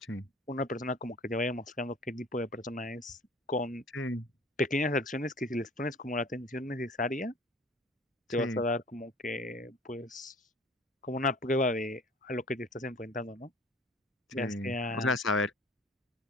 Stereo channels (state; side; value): normal; both; correlation 0.47